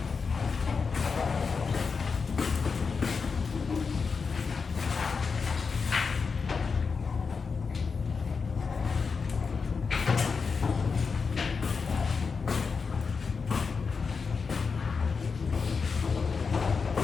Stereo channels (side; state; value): right; quieter; 5.2 dB